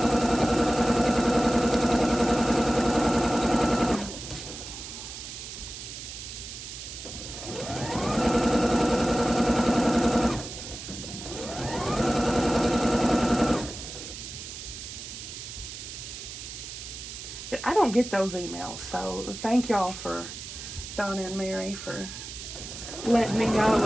I don't get those emails, so thank y'all for Donna and Mary for letting me know it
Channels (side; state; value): right; noise; hiss, 10 dB below the sound